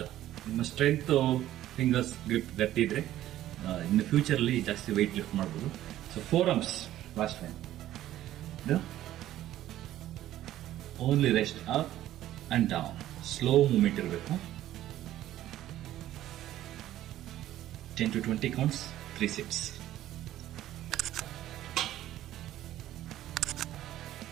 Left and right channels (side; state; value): left; quieter; 13.4 dB